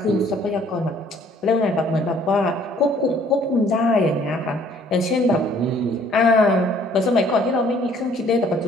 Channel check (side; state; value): both; normal; correlation 0.59